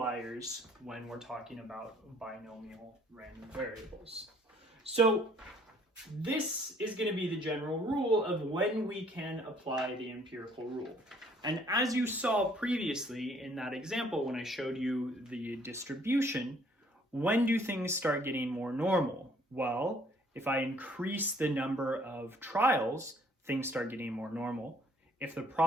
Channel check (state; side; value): normal; both; correlation 0.61